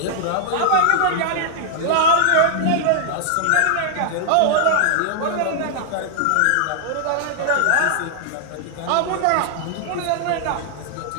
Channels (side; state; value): both; different; correlation -0.01